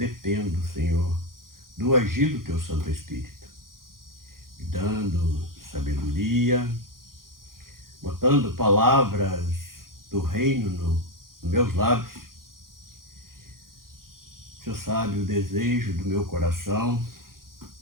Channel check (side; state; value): left; late; 0.92 ms